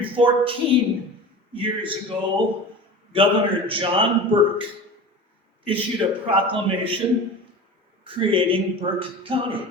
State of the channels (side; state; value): both; normal; correlation 0.34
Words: years ago, Governor John Burke issued a proclamation creating Burke County.